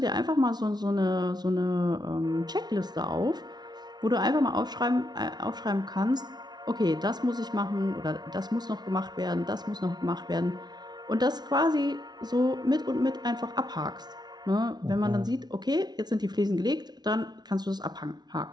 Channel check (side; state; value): left; late; 0.20 ms